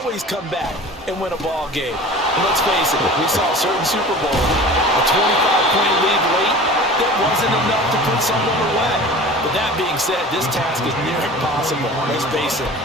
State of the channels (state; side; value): normal; both; correlation 0.39